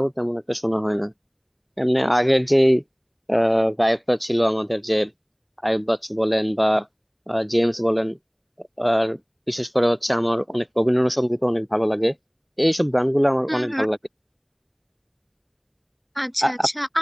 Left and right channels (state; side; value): identical; both; correlation 1.00